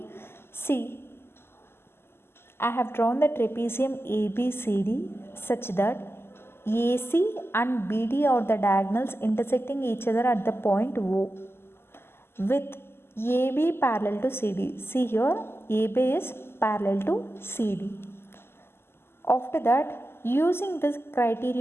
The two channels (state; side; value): late; right; 0.12 ms